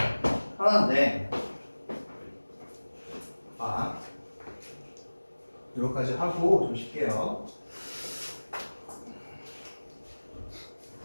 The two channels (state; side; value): inverted; both; correlation -1.00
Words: 하나인데, 이거까지 하고 좀 쉴게요.